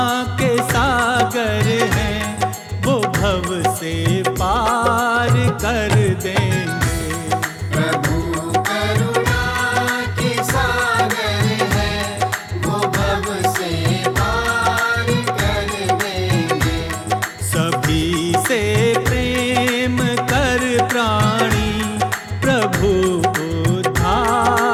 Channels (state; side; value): identical; both; correlation 1.00